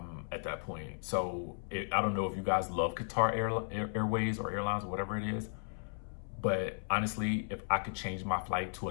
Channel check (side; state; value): right; silent; 54 dB below the other